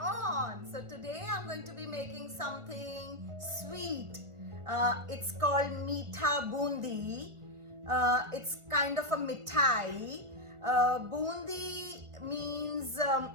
So today I'm going to be making something sweet. It's called Meetha Bundi. It's kind of a mithai. Bundi means,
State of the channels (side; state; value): left; late; 1.4 ms